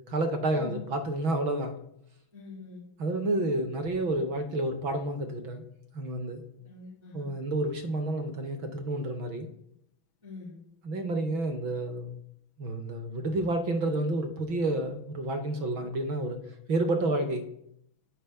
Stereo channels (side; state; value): left; late; 6.1 ms